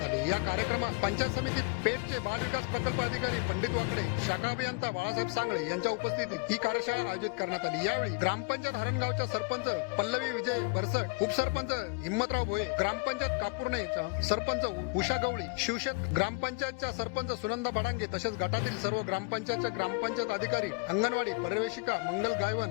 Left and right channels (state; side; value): quieter; right; 30.2 dB